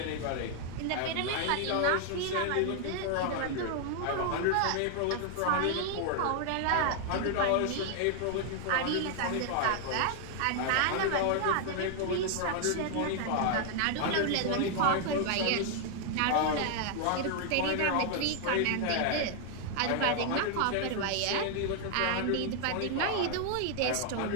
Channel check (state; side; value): different; both; correlation 0.00